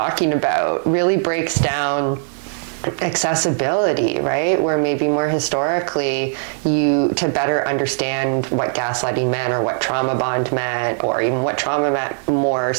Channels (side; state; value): left; silent; digital silence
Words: about really breaks down accessibility, right? Where maybe more historically, to better understand what gaslighting meant or what trauma bond meant, or even what trauma meant more